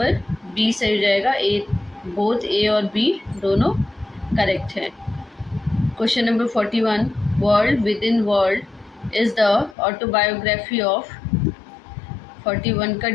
बी सही हो जाएगा। बोथ ए और बी दोनों करेक्ट हैं। Question number 41, world within world is the autobiography of. 41 का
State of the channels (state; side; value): drops out; right; at 9.8 s